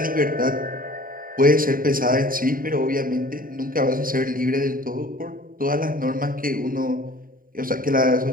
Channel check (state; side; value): late; left; 0.41 ms